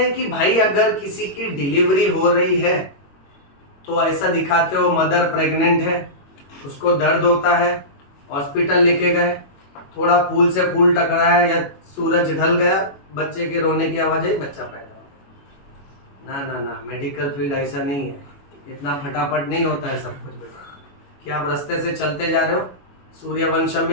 कि भाई अगर किसी की डिलीवरी हो रही है तो ऐसा दिखाते हो, मदर प्रेग्नेंट है, उसको दर्द होता है, हॉस्पिटल लेके गए, थोड़ा फूल से फूल टकराया या सूरज ढल गया, बच्चे के रोने की आवाज आई, बच्चा पैदा हो। ना ना ना, मेडिकल फील्ड ऐसा नहीं है, इतना फटाफट नहीं होता है सब कुछ बेटा। क्या आप रास्ते से चलते जा रहे हो, सूर्यवंशम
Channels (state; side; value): late; right; 21 ms